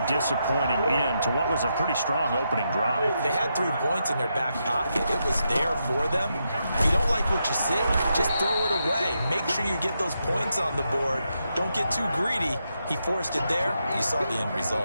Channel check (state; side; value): inverted; both; correlation -0.83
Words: disappointing end to what was a pretty strong opening drive. They had 3 points in their back pocket. It was there for them. If you don't like what you see, just throw it away. Make sure you get those points on the board. Don't get too greedy. He forced it there. You saw the end